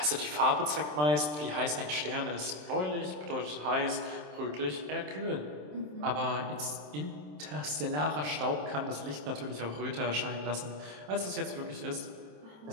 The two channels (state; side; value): late; left; 27 ms